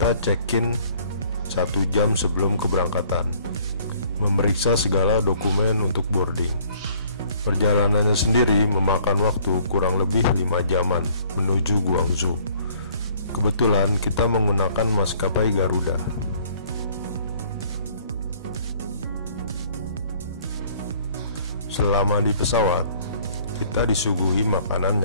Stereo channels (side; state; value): both; inverted; correlation -0.58